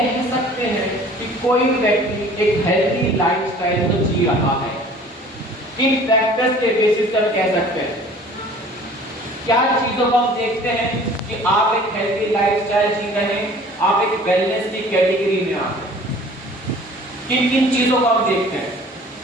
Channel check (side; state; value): both; normal; correlation 0.49